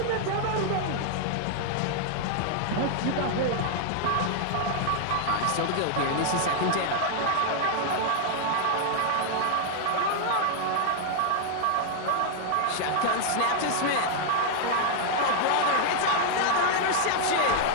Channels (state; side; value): different; both; correlation 0.00